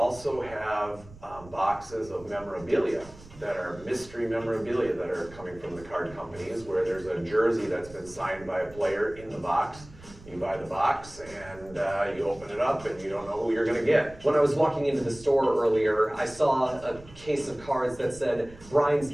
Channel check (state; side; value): noise; right; rumble, 20 dB below the sound